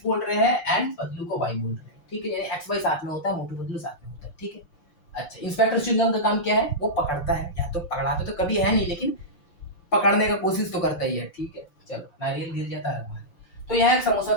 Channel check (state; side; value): late; right; 6.7 ms